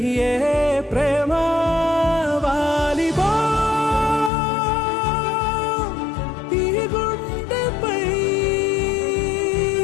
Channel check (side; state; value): right; drops out; at 4.3 s